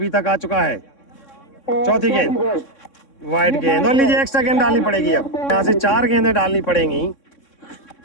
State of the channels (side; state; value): right; late; 3.6 ms